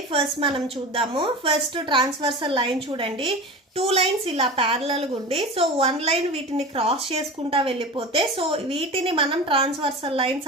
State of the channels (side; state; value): both; normal; correlation 0.31